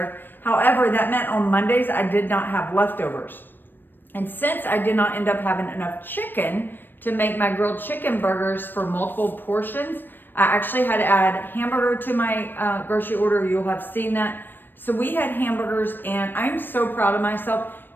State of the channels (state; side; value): late; right; 0.094 ms